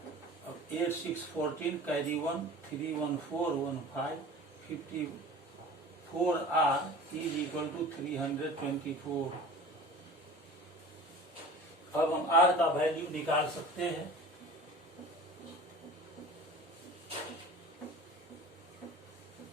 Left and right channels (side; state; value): both; normal; correlation 0.39